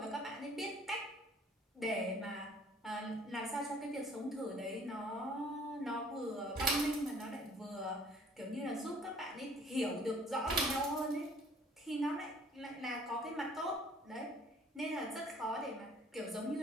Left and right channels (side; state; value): both; normal; correlation 0.55